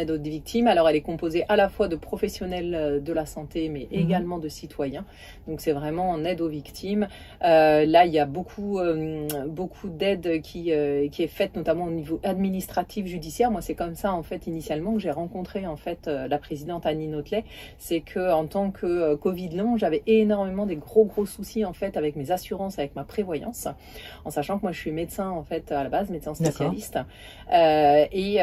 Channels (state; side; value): identical; both; correlation 1.00